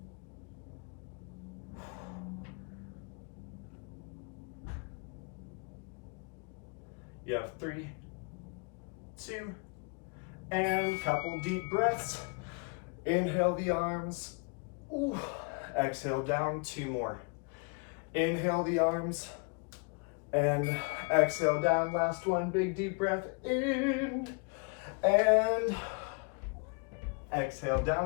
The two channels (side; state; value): right; quieter; 35.5 dB